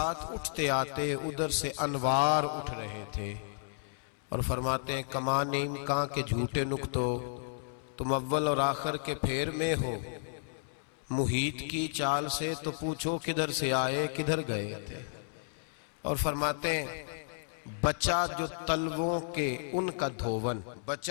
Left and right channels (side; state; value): right; silent; 56 dB below the other